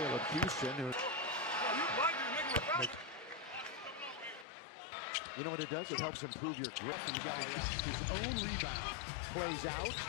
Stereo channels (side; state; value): right; drops out; at 4.5 s